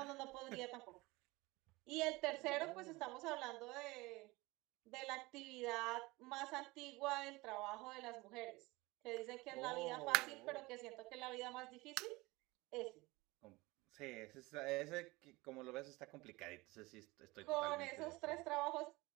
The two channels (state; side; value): quieter; left; 22.2 dB